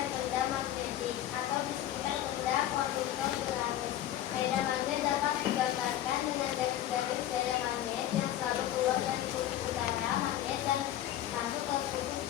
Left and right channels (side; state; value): right; quieter; 12.6 dB